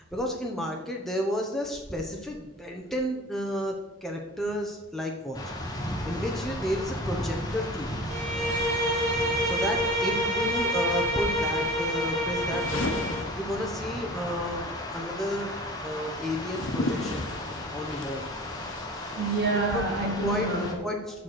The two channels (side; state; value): both; normal; correlation 0.39